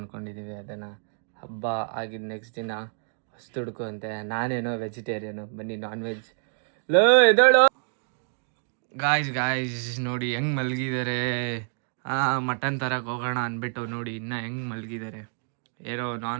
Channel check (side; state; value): left; silent; 60 dB below the other